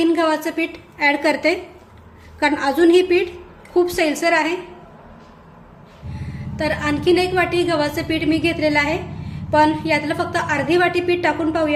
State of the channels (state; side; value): identical; both; correlation 1.00